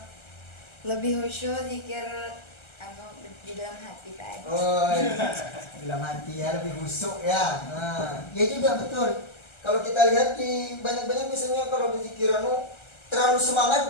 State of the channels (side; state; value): right; late; 1.3 ms